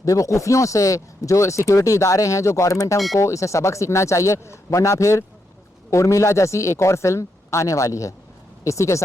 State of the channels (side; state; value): both; normal; correlation 0.81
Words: बेवकूफ़ियों से, जो सिक्योरिटी इदारे हैं, जो गवर्नमेंट है, उनको इसे सबक सीखना चाहिए, वरना फिर उर्मिला जैसी एक और फिल्म आने वाली है। इसी के